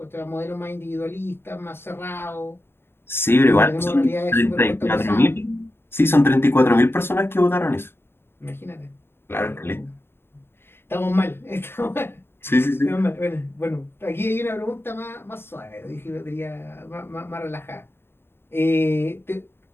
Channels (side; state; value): right; late; 0.11 ms